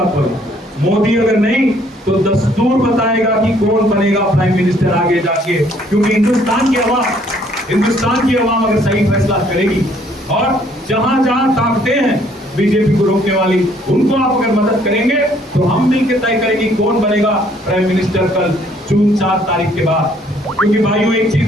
बोला, मोदी अगर नहीं तो दस्तूर बताएगा कि कौन बनेगा प्राइम मिनिस्टर आगे जाके, क्योंकि हिंदुस्तान की आवाम अगर सही फैसला करेगी और जहां जहां ताकतें हैं बीजेपी को रोकने वाली, उनको आप अगर मदद करेंगे तो हम मिलकर तय करेंगे कौन बनेगा प्राइम मिनिस्टर कल जून 4 तारीख के बाद। क्योंकि भाइयों, एक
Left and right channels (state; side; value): normal; both; correlation 0.63